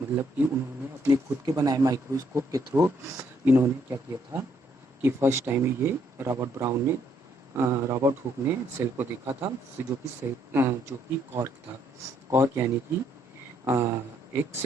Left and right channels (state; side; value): normal; both; correlation 0.70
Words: मतलब कि उन्होंने अपने खुद के बनाए माइक्रोस्कोप के थ्रू इन्होंने क्या किया था कि फर्स्ट टाइम ये रॉबर्ट हुक ने सेल को देखा था, जो कि कॉर्क था। कॉर्क यानी कि एक